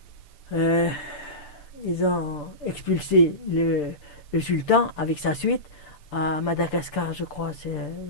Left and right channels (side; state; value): right; late; 6.8 ms